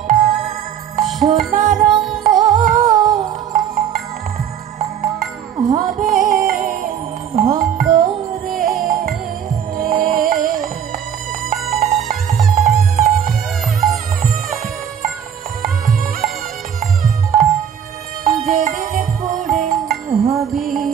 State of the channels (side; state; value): left; quieter; 8.7 dB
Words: সোনার রঙ হবে ভঙ্গরে। যেদিন পড়ে হবি